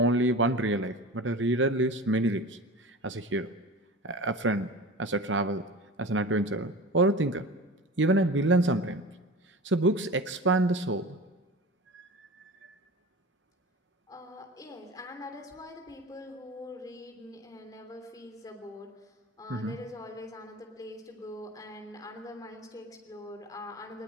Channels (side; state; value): both; normal; correlation 0.33